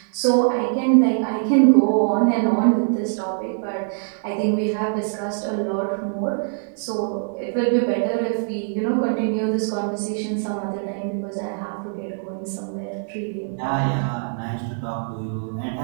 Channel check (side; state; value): left; silent; digital silence